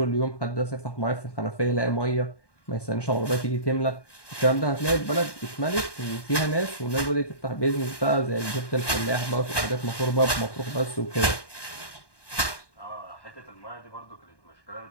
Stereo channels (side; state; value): right; late; 1.1 ms